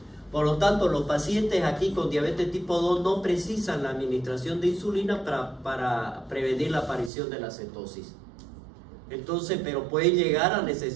Por lo tanto, los pacientes aquí con diabetes tipo 2 no precisan la administración de insulina para prevenir la aparición de la cetosis. Entonces, pero pueden llegar a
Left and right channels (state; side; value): drops out; left; at 7.1 s